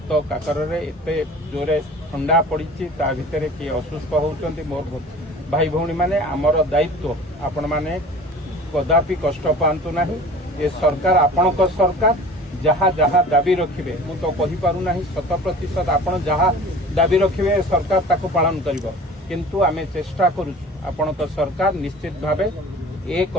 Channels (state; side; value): normal; both; correlation 0.42